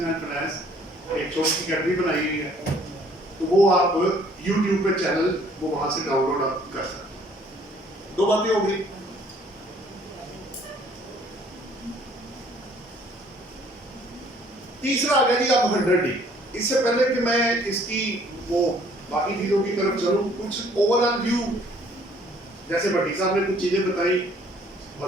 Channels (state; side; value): normal; both; correlation 0.59